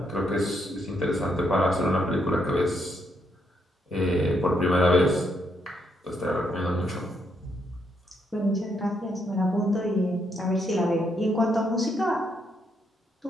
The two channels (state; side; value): normal; both; correlation 0.76